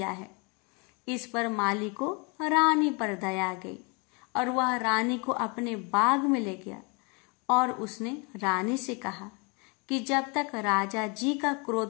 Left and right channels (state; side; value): quieter; right; 31.8 dB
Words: है। इस पर माली को रानी पर दया आ गई और वह रानी को अपने बाग में ले गया और उसने रानी से कहा कि जब तक राजा जी का